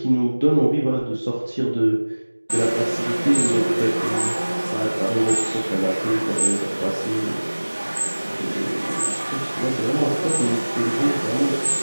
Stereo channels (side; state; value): both; inverted; correlation -1.00